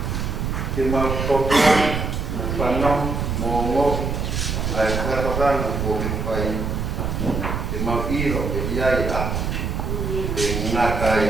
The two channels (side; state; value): right; noise; rumble, 2 dB below the sound